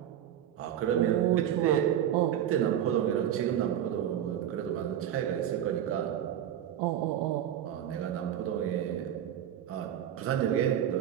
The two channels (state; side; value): quieter; left; 10.6 dB